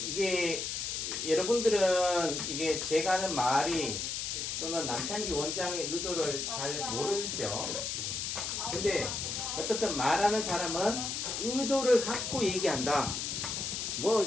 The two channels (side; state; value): left; noise; hiss, 3 dB below the sound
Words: 여러분들은 이게 제가 하는 말이 또는 남창기 원장의 의도를 잘 모르죠. 근데 어떻든 말하는 사람은 의도를 갖고 얘기한다. 뭐